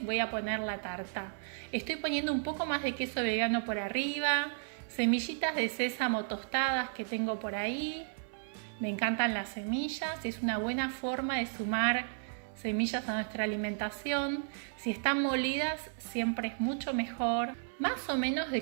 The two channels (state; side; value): silent; left; 55 dB below the other